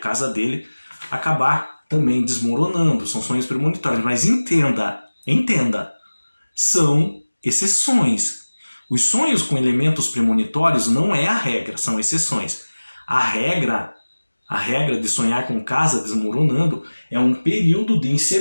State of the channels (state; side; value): inverted; both; correlation -1.00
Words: dele acabar também desmoronando. São sonhos premonitórios, mas entenda, são exceções. Os sonhos com elementos premonitórios não é a regra, são exceções. A regra de sonhar com casa desmoronando é um período de